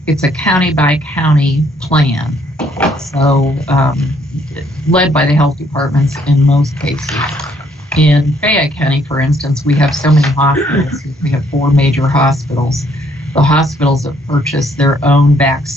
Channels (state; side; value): normal; both; correlation 0.67